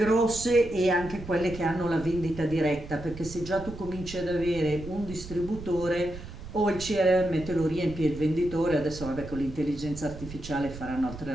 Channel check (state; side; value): noise; right; rumble, 12 dB below the sound